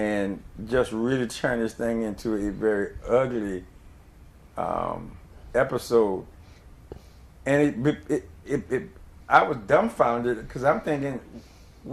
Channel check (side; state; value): both; identical; correlation 1.00